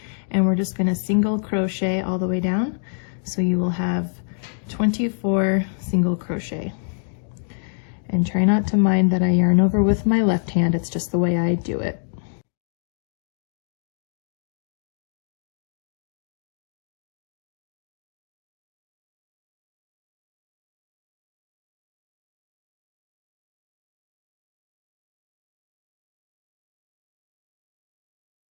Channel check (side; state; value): right; silent; digital silence